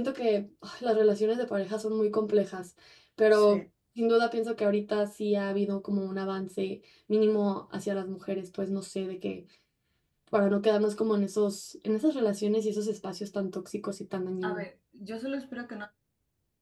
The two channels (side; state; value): both; identical; correlation 1.00